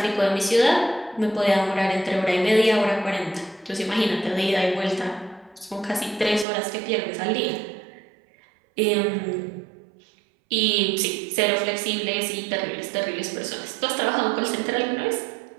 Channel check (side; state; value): left; drops out; at 6.5 s